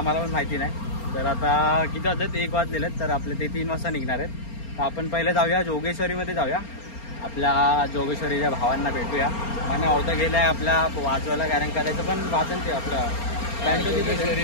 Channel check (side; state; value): right; late; 4.3 ms